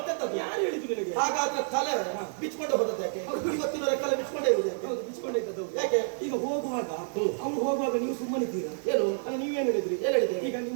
ಯಾರು ಹೇಳಿದ್ರು ನಿನಗೆ? ಹಾಗಾದ್ರೆ ತಲೆ ಬಿಚ್ಕೊಂಡು ಹೋದದ್ದು ಯಾಕೆ? ಇವತ್ತಿನ ಕಲೆ ಬಿಚ್ಕೊಂಡೇ ಇರುವುದು ಯಾಕೆ? ಬಿಚ್ಕೊಂಡೇ ಇದ್ದದ್ದು ಯಾಕೆ? ಈಗ ಹೋಗುವಾಗ ಅವ್ರು ಹೋಗುವಾಗ ನೀವು ಸುಮ್ಮನಿದ್ದೀರಾ? ಏನು ನೀವೇನ್ ಹೇಳಿದ್ರಿ? ಏನ್ ಹೇಳಿದೆ? ಈಗ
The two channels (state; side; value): silent; left; digital silence